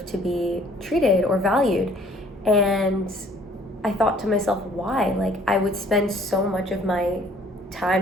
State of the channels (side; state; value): both; normal; correlation 0.57